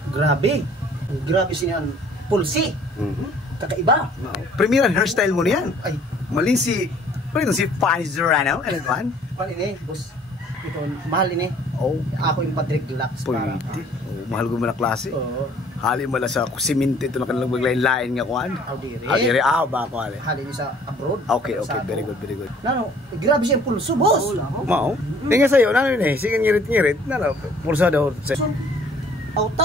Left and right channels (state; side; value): normal; both; correlation 0.56